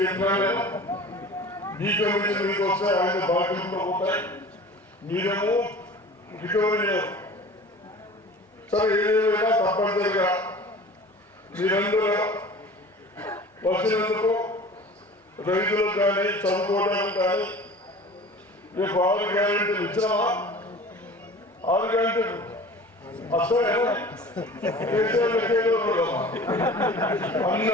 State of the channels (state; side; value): normal; both; correlation 0.41